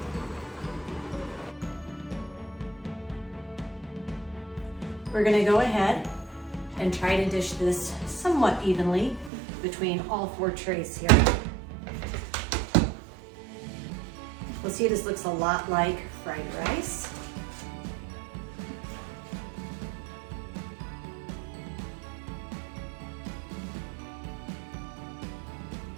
We're going to go ahead and try to dish this somewhat evenly between all 4 trays here. We'll see, this looks a lot like fried rice.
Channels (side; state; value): left; drops out; at 9.3 s